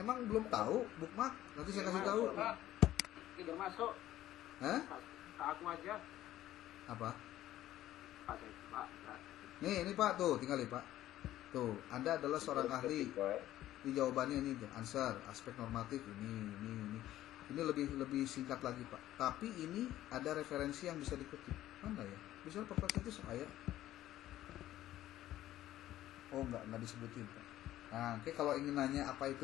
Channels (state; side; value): quieter; right; 13.8 dB